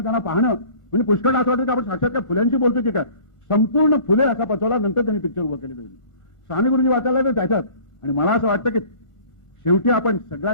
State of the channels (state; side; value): late; right; 1.4 ms